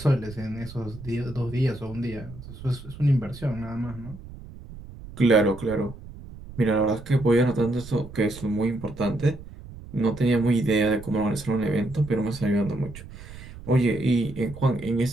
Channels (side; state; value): right; noise; rumble, 15 dB below the sound